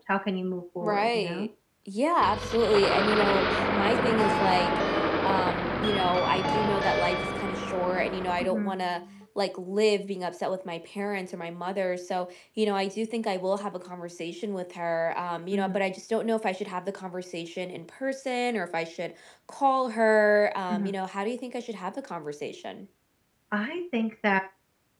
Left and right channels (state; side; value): identical; both; correlation 1.00